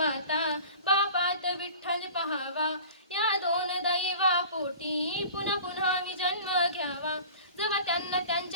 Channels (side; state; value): both; inverted; correlation -0.41